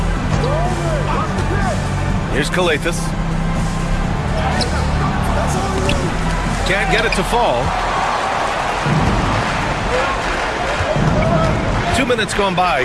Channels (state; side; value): identical; both; correlation 1.00